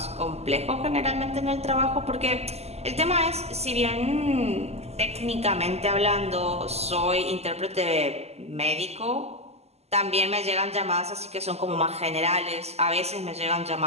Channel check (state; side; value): late; left; 0.30 ms